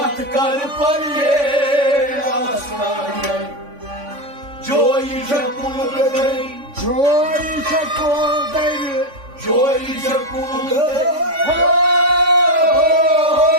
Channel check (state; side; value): late; left; 3.5 ms